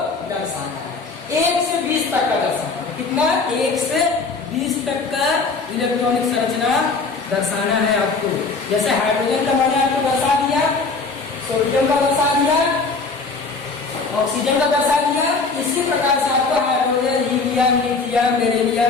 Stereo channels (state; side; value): quieter; right; 4.1 dB